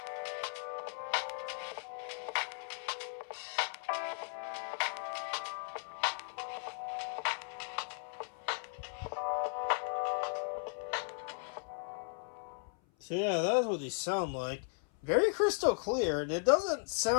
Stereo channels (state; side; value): silent; right; 53 dB below the other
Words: So yeah, that's what these sound like. Very crystal clear, and it doesn't